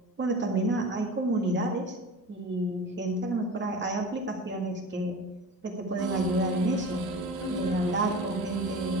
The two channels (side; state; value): both; normal; correlation 0.34